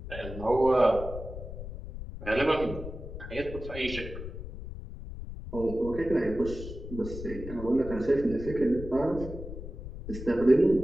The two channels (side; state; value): left; noise; rumble, 10 dB below the sound